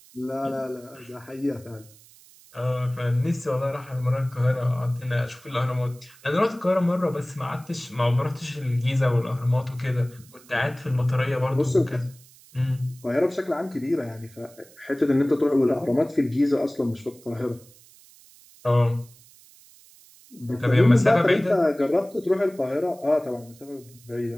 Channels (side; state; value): right; noise; hiss, 25 dB below the sound